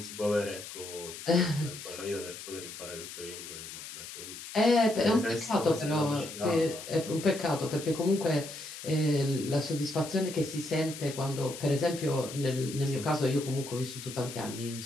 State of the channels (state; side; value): noise; left; hiss, 11 dB below the sound